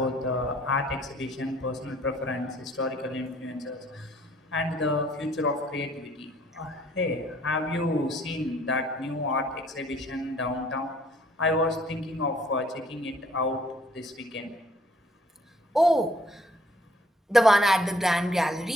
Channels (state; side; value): normal; both; correlation 0.60